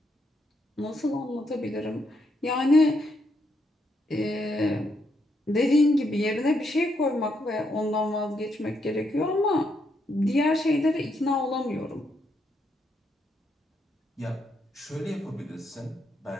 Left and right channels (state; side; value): normal; both; correlation 0.77